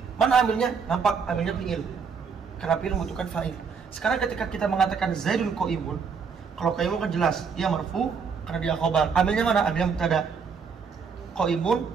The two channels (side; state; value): left; quieter; 5.9 dB